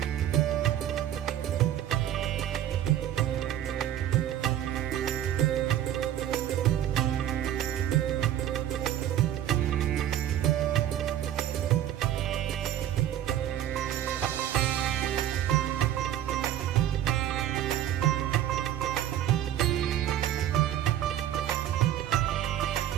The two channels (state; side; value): quieter; left; 11.4 dB